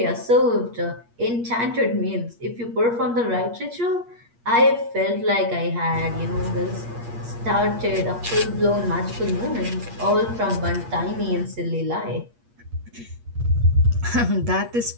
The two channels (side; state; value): left; late; 8.5 ms